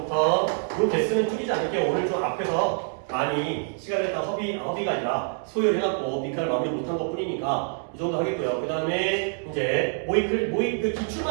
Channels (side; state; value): left; silent; 59 dB below the other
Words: 요 개수는 줄이지 않을게요. 오늘 좀 앞에서 많이 시간을 다 허비가 아니라 소요해갖고 빈칸을 마무리 못한 것 뿐이니까 이 정도 하겠고요. 그 다음에 이제 모의 그